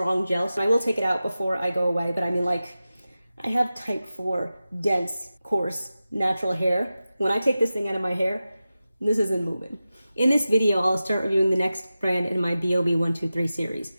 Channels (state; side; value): inverted; both; correlation -0.94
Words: gel. So I will take it out before I go away, but I mean, like, I have type 4 dense, coarse, natural hair. When I take this thing out of my hair, this isn't moving. In this video, I'll start reviewing the next brand in my BoB123 series.